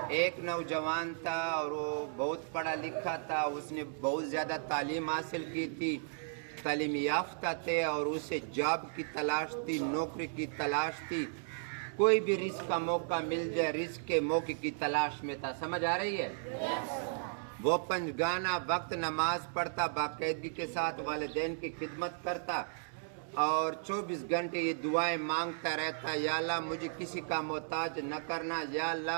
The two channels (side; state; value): left; silent; digital silence